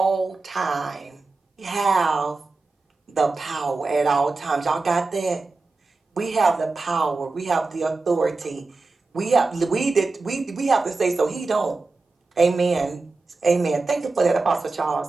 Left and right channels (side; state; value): left; quieter; 3.7 dB